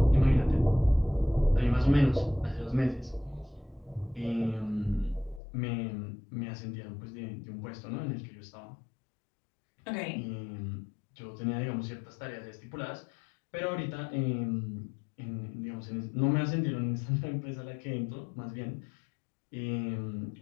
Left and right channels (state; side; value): drops out; right; at 5.4 s